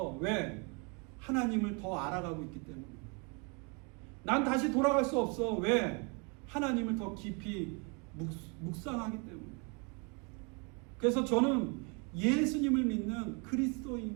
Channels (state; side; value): quieter; left; 33.3 dB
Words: 왜? 하나님을 더 알아가고 있기 때문에. 난 다시 돌아갈 수 없어. 왜? 하나님을 더 깊이 묵상하기 때문에. 그래서 저는 예수님을 믿는